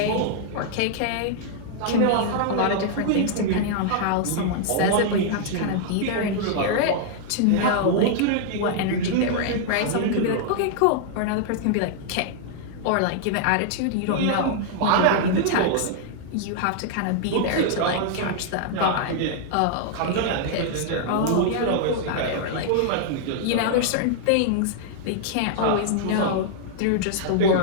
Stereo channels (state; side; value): different; both; correlation -0.01